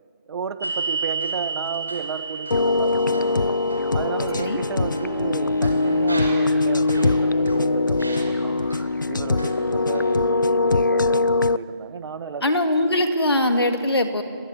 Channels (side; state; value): both; inverted; correlation -0.68